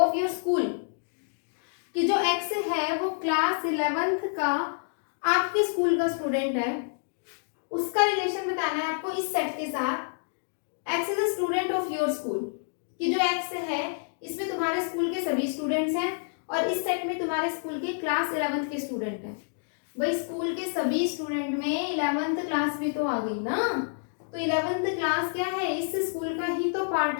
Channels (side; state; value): right; silent; digital silence